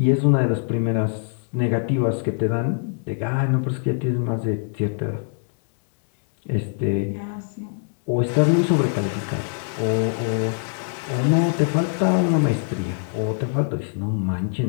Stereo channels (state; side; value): silent; right; 63 dB below the other